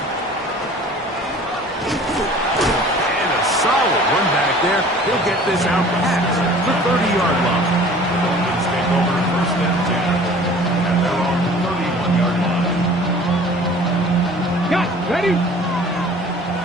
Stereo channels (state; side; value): normal; both; correlation 0.47